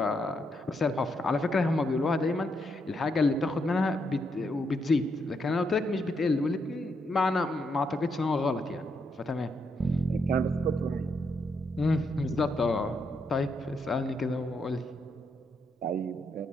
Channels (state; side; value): normal; both; correlation 0.79